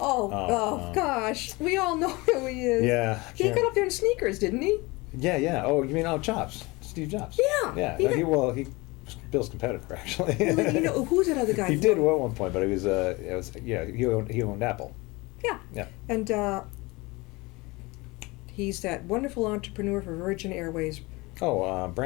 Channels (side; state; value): right; quieter; 23.9 dB